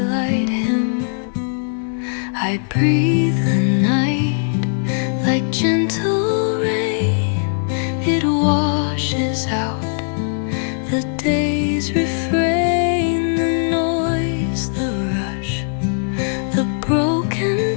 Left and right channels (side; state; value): right; silent; digital silence